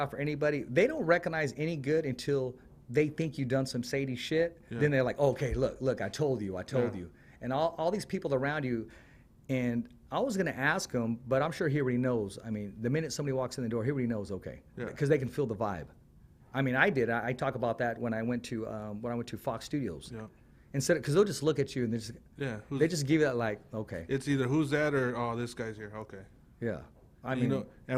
or anybody, they don't recognize any good until they think you've done some shady shit. Yeah. Then they're like, okay, look, I told you. And all these people around you, and I was going to ask him, but I'm sure he already knows. I mean, the minute somebody walks in the door, he already knows, okay, Yeah. because they can feel the vibe. I mean, I did. I talk about that when I went to Fox Studios. Yeah. Instead, because they'll just look at you and they just give you that like, okay, It's either who's that or, oh, this guy's here. Okay. yeah. I mean, You know,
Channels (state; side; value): identical; both; correlation 1.00